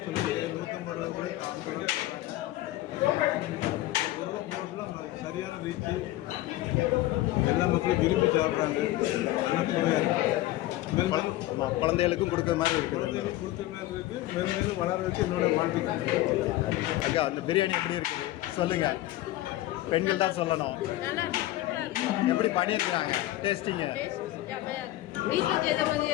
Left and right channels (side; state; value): right; quieter; 16.1 dB